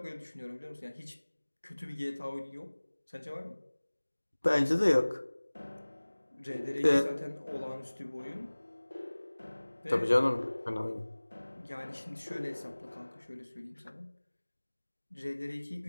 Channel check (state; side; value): inverted; both; correlation -1.00